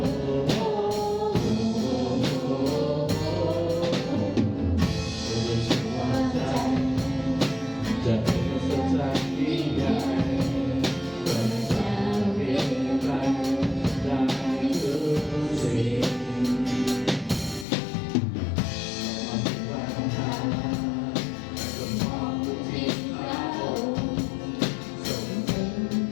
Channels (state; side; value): drops out; right; at 17.7 s